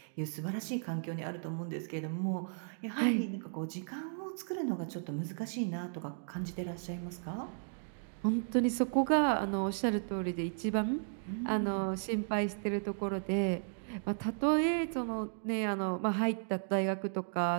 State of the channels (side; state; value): left; silent; digital silence